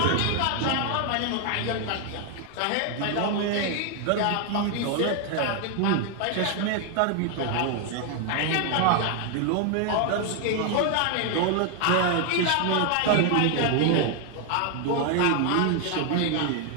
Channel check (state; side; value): different; both; correlation 0.01